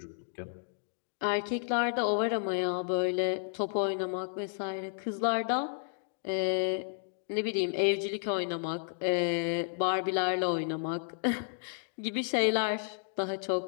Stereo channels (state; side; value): silent; right; digital silence